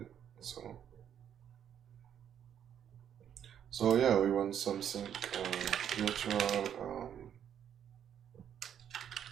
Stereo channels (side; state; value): left; quieter; 9.2 dB